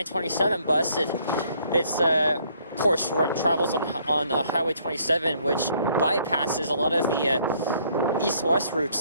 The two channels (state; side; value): inverted; both; correlation -0.65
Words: bus, it's of course travels on Highway 27, which bypasses a lot of the east-west